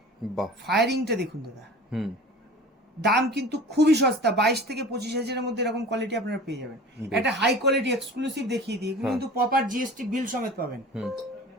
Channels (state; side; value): normal; both; correlation 0.40